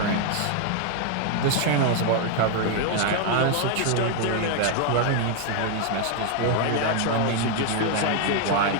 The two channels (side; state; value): both; different; correlation 0.00